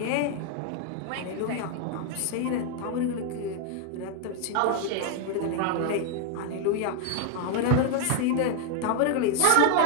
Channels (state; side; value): different; both; correlation 0.01